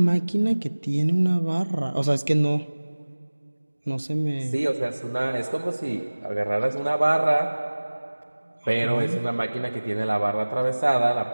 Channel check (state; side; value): inverted; both; correlation -1.00